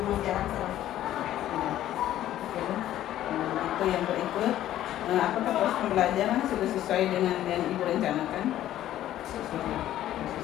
jarang salah. Itu yang berikut, apakah proses pembelajaran sudah sesuai dengan yang Ibu rencanakan?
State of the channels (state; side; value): quieter; right; 12.9 dB